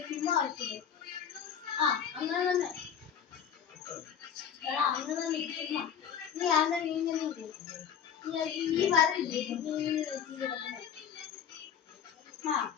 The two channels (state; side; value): quieter; right; 8.3 dB